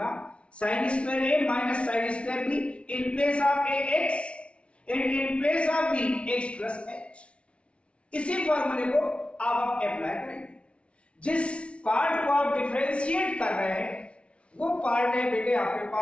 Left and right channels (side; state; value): right; late; 0.060 ms